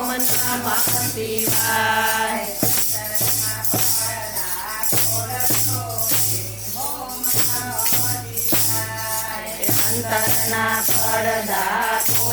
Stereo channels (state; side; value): noise; right; hum, 22 dB below the sound